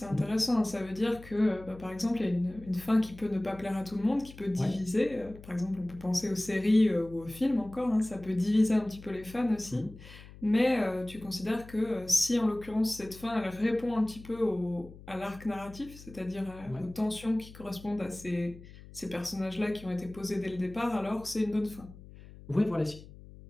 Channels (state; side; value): noise; left; hum, 18 dB below the sound